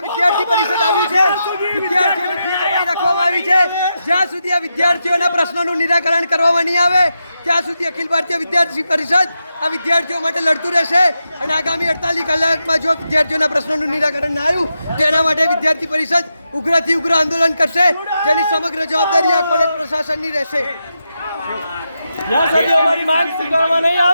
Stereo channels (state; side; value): inverted; both; correlation -0.87